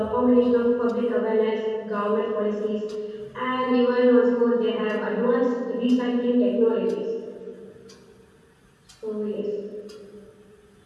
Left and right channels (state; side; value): identical; both; correlation 1.00